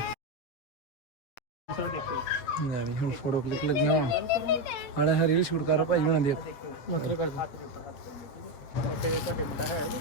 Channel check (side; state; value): right; late; 8.0 ms